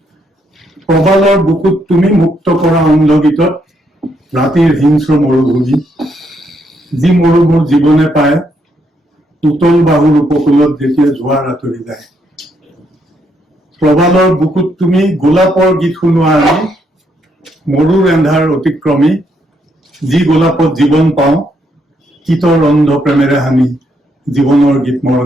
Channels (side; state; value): both; normal; correlation 0.75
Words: Probalor bukut tumi mukto kora onlogitot ratir hinsro morubhumi ji morubur jibone paye utol bahur upokulot jethiya jhoar atori jay. Probalor bukut tumi golapor git শুনোৱা আমি মৰুৰ এন্ধাৰ অতিক্ৰমী যি গোলাপত জীৱন পাওঁ কিতৰ অন্ধ প্ৰেমেৰে হানি জীৱনৰ গীত